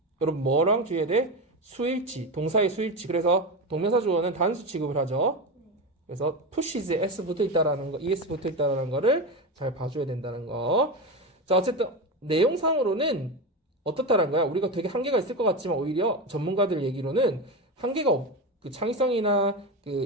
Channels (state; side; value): normal; both; correlation 0.19